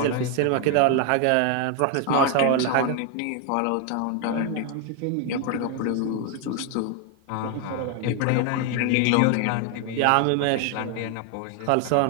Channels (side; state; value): both; different; correlation 0.01